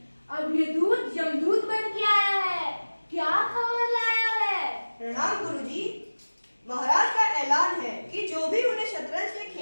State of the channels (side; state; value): both; inverted; correlation -1.00